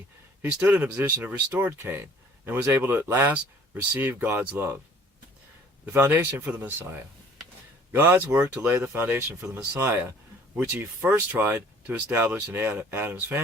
he stood in a position of restored Cain and was able to at last receive God's love. The foundation for the Messiah. God's work to lay the foundation for the Messiah, which he first tried to establish in Adam's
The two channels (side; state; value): both; normal; correlation 0.54